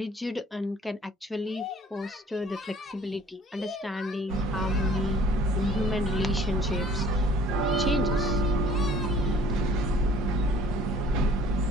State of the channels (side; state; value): both; normal; correlation 0.54